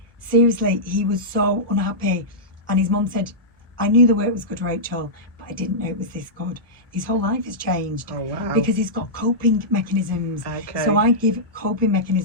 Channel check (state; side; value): normal; both; correlation -0.13